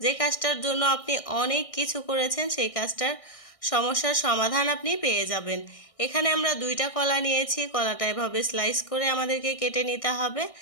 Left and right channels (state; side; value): late; right; 1.6 ms